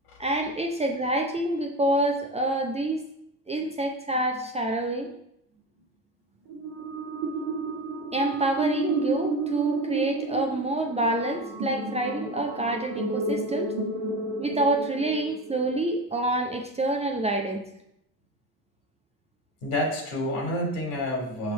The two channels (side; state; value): both; normal; correlation 0.25